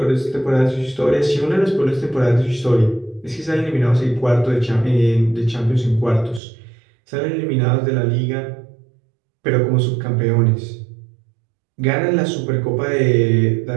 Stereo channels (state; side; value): drops out; left; at 6.4 s